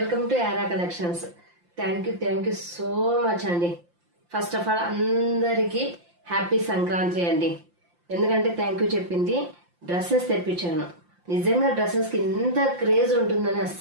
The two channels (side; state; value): left; late; 5.8 ms